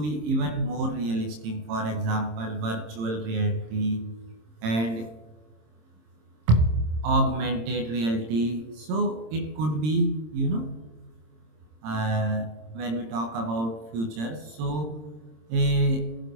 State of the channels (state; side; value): late; left; 26 ms